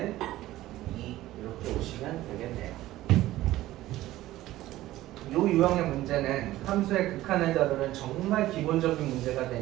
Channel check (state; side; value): quieter; left; 15.7 dB